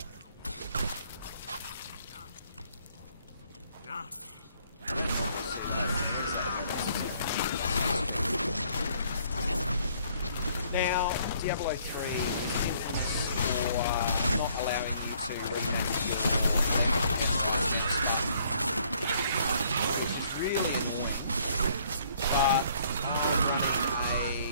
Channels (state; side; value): inverted; both; correlation -0.63